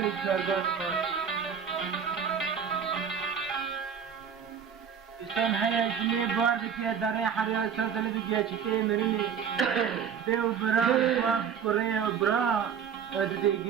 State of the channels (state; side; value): quieter; left; 7.5 dB